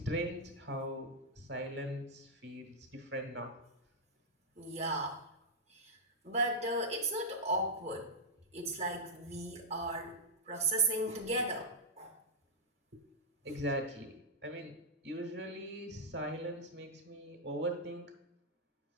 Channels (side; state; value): both; normal; correlation -0.08